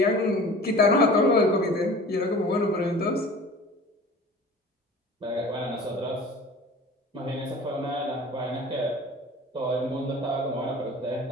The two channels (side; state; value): both; normal; correlation 0.42